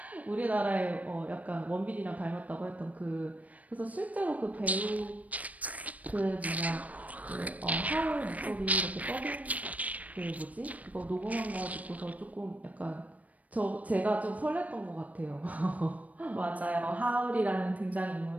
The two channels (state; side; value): late; left; 0.071 ms